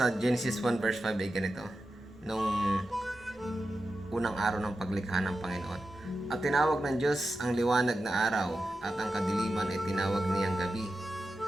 Genesis 1 verse 5 ay ganito, nung unang araw ng paglikha ng Panginoon. At tinawag ng Diyos ang liwanag na araw at ang kadiliman ay tinawag niyang gabi.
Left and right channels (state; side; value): normal; both; correlation 0.91